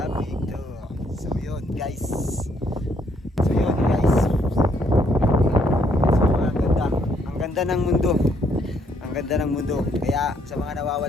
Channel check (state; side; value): normal; both; correlation 0.70